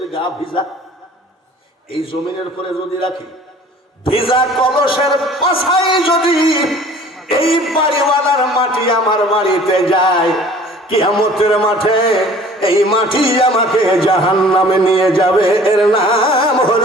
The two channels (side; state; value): both; normal; correlation 0.49